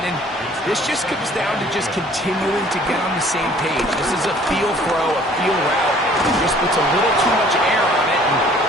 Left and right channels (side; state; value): both; normal; correlation 0.55